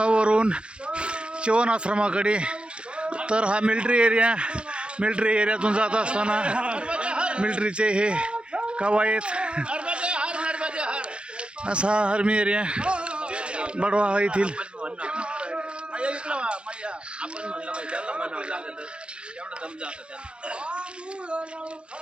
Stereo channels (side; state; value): left; late; 0.056 ms